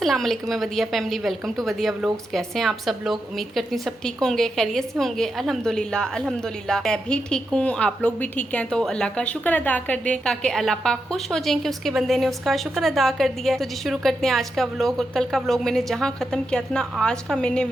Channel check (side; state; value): both; normal; correlation 0.86